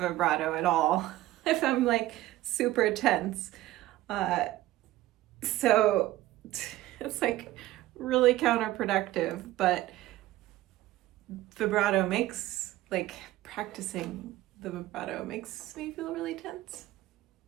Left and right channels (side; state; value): left; quieter; 15.8 dB